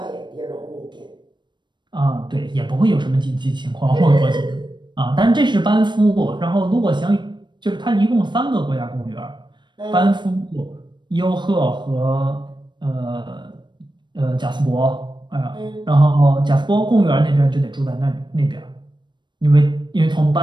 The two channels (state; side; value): late; left; 0.22 ms